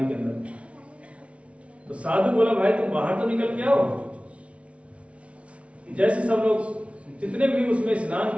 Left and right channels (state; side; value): late; left; 0.062 ms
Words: के अंदर। तो साधु बोला भाई तुम बाहर तो निकल के आओ। जैसे सब लोग जितने भी उसमें स्नान